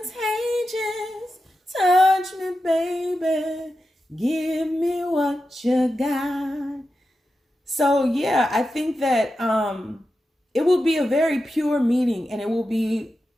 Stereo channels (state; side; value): normal; both; correlation 0.90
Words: Touch me, baby. Give me what you got. So yeah, I think that it will be a very pure meeting, and it will be